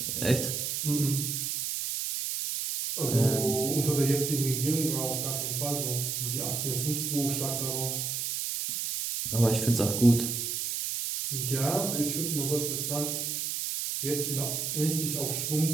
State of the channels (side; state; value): right; noise; hiss, 2 dB below the sound